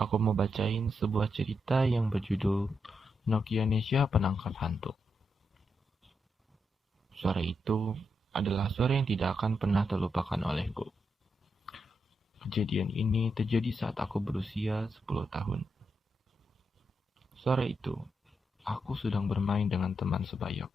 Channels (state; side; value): normal; both; correlation 0.83